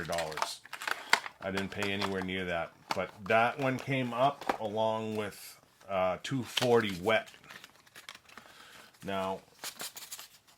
I didn't pay anywhere near that. But that one came up along with 240 wet. Now,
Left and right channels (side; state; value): both; identical; correlation 1.00